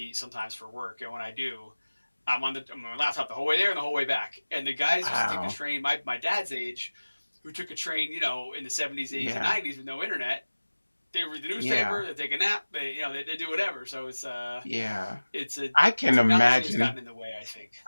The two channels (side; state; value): both; inverted; correlation -1.00